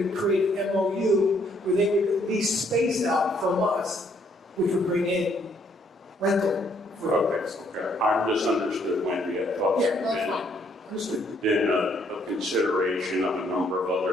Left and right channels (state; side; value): normal; both; correlation 0.68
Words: to create an MOU where they would lease space out from us, which would bring in rental. Okay. I misunderstood Wendy. I thought then a consideration of a number of